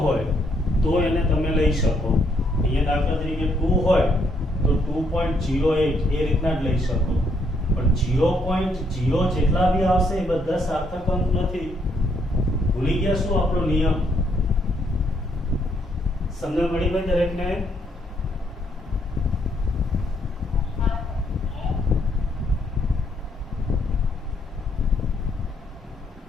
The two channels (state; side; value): normal; both; correlation 0.72